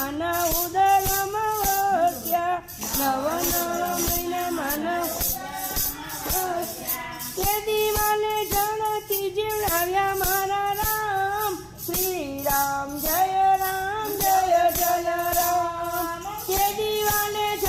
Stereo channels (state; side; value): identical; both; correlation 1.00